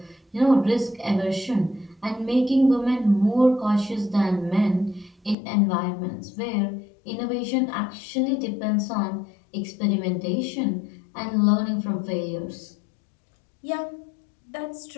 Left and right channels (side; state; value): right; drops out; at 5.4 s